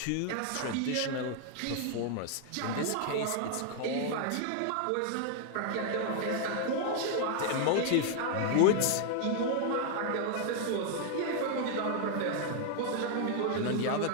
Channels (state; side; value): different; both; correlation 0.00